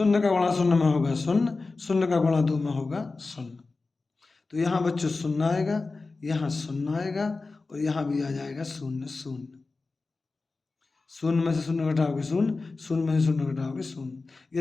का गुणा 0 में होगा 0, 0 का गुणा 2 में होगा 0। तो यहाँ बच्चों 0 आएगा, यहाँ 0 आएगा और यहाँ भी आ जाएगा 0 0। 0 में से 0 घटाओगे 0, 0 में से 0 घटाओगे 0।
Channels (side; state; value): right; quieter; 3.8 dB